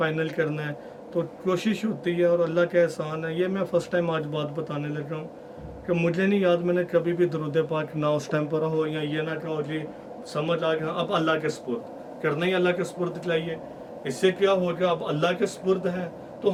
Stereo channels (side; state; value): both; identical; correlation 1.00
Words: کرنا ہے تو کوشش ہوتی ہے، اور اللہ کا احسان ہے، یہ میں فرسٹ ٹائم آج بات بتانے لگ رہا ہوں کہ مجھے نہیں یاد میں نے کبھی بھی درود پاک نہ اس ٹائم پڑھا ہو یا یہ نہ کہا ہو جی سمجھ آ گیا اب اللہ کے سپرد کرنا ہی اللہ کے سپرد چاہیے. اس سے کیا ہوگا، اب اللہ کے سپرد ہے